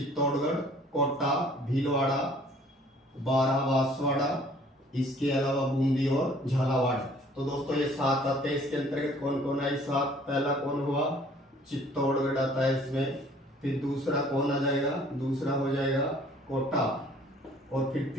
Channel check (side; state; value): both; normal; correlation 0.55